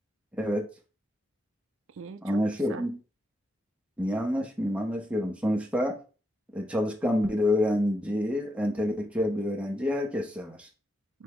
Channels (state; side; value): normal; both; correlation 0.84